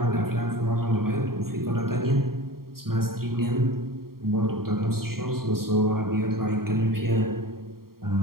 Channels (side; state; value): left; late; 0.93 ms